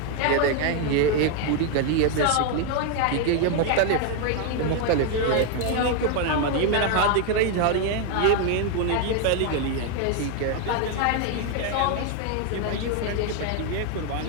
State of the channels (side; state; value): both; different; correlation 0.01